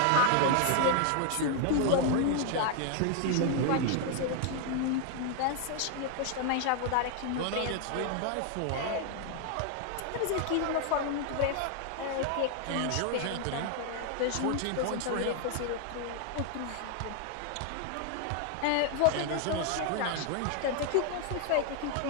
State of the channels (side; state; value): both; different; correlation 0.00